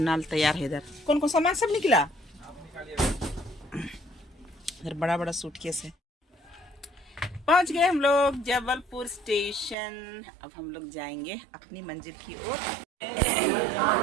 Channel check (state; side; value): drops out; left; at 9.8 s